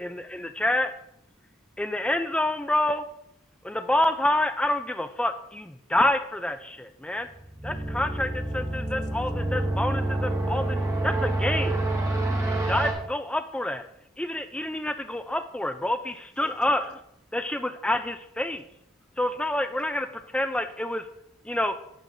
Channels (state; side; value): normal; both; correlation 0.84